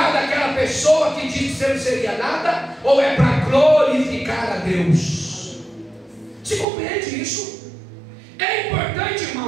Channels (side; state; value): left; drops out; at 6.7 s